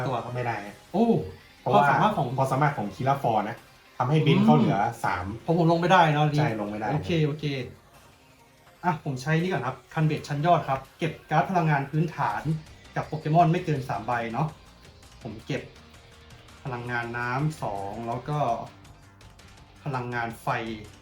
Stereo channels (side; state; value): both; identical; correlation 1.00